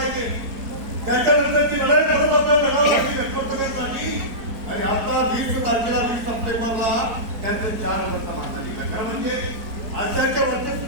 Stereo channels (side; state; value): left; late; 4.5 ms